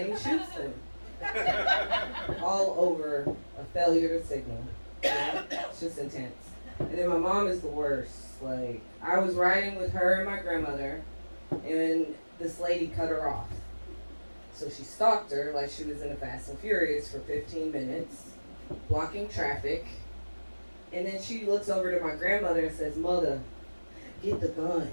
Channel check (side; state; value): both; inverted; correlation -1.00